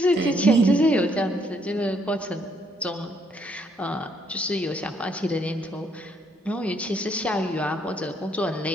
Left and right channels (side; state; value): both; normal; correlation 0.70